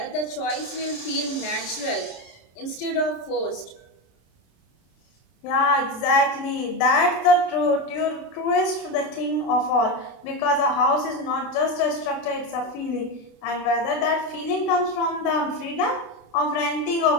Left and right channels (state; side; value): late; right; 27 ms